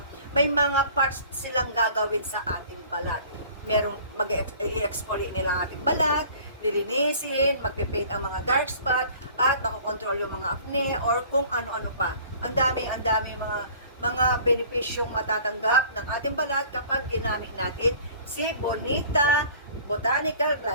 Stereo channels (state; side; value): inverted; both; correlation -0.49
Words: may mga parts silang gagawin sa ating balat. Merong mag-i-exfoliate nila ang ating balat, lilinisin, magpipaint ang mga dark spot, at makokontrol yung mga acne or kung ano-ano pa. Ang daming mga benepisyong matatanggap ng ating balat kapag ginamit natin si Bonita Botanical